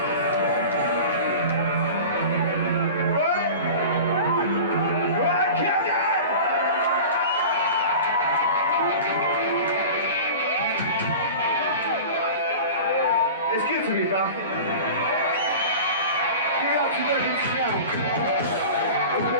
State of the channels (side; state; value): both; inverted; correlation -0.35